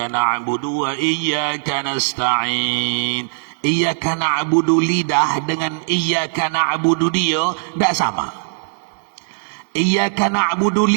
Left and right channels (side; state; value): left; silent; digital silence